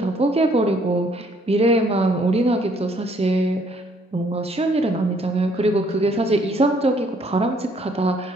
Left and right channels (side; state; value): both; normal; correlation 0.65